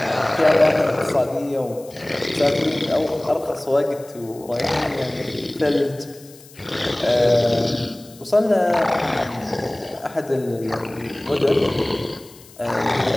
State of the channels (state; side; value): noise; left; hiss, 23 dB below the sound